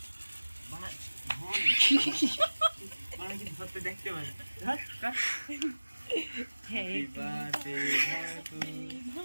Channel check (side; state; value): both; inverted; correlation -1.00